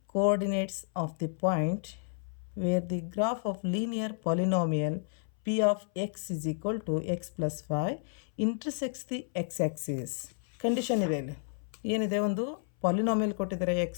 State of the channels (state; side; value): silent; right; 57 dB below the other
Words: coordinates of the point where the graph of linear polynomial p of x is equal to x plus 5 intersects the x-axis. Condition ಇದೆ ಇಲ್ಲಿ. ಏನಿದೆ? ಒಂದು polynomial ಕೊಟ್ಟಿದ್ದಾರೆ x